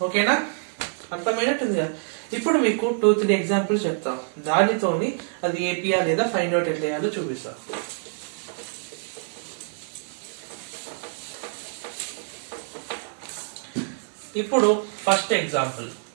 ఓకేనా? అర్థమైనట్టుంది కదా. ఇప్పుడు మీకు 2-3 ఎగ్జాంపుల్స్ చెప్తాం, దానితోని అది ఏపీఆ లేదా ఫైండ్ అవుట్ ఎట్లా చేయాలో చూపిస్తాం. ఇప్పుడు ఫస్ట్ ఎగ్జాంపుల్,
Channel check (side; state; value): left; silent; digital silence